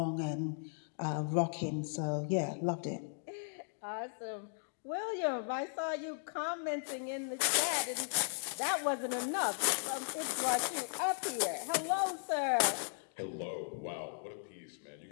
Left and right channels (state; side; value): silent; right; digital silence